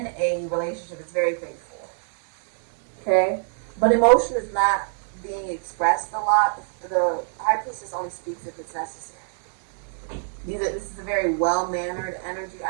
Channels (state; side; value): silent; left; 62 dB below the other